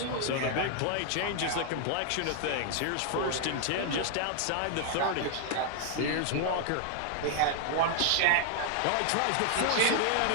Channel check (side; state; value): both; different; correlation 0.00